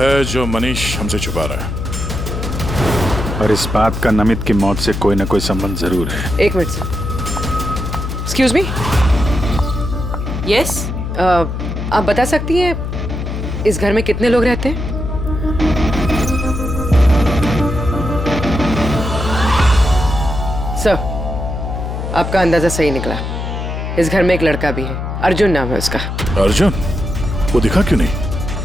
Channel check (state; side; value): noise; left; hum, 4 dB below the sound